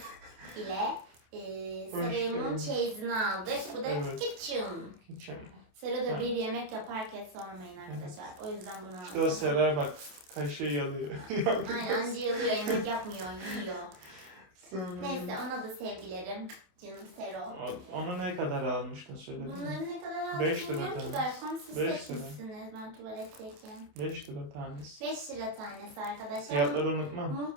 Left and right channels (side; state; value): left; late; 27 ms